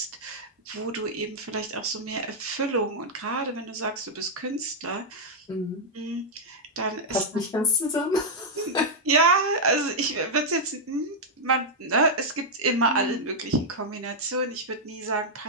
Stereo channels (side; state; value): both; normal; correlation -0.04